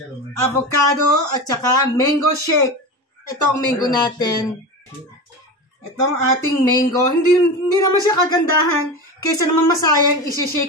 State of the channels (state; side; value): normal; both; correlation 0.25